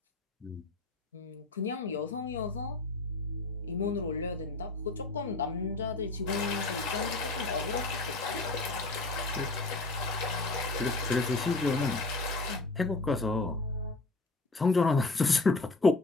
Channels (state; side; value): quieter; right; 3.2 dB